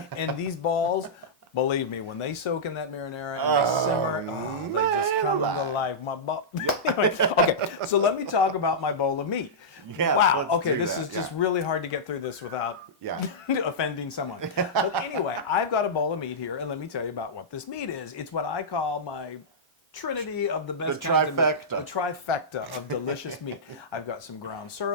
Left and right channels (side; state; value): both; normal; correlation -0.13